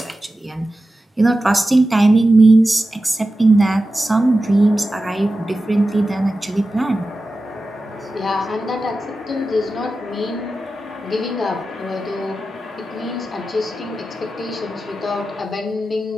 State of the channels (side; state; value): both; normal; correlation 0.93